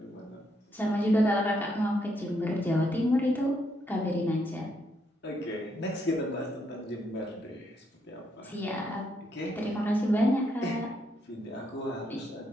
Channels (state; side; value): normal; both; correlation 0.76